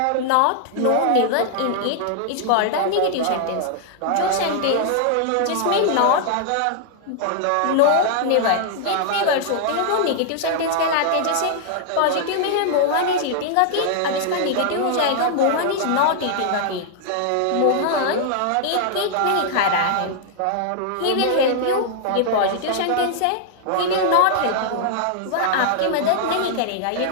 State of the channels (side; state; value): both; different; correlation -0.01